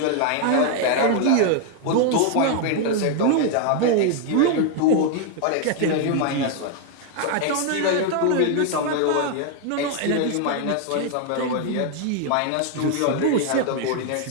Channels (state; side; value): different; both; correlation 0.00